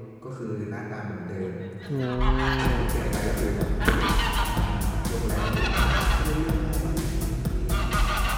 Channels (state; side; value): identical; both; correlation 1.00